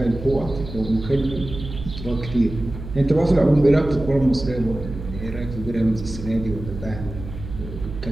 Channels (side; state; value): right; noise; hum, 10 dB below the sound